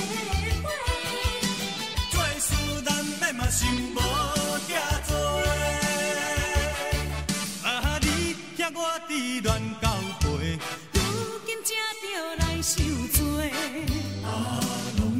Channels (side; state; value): both; identical; correlation 1.00